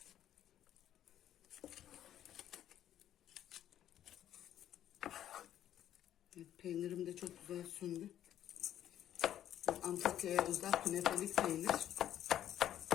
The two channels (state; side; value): quieter; right; 11.3 dB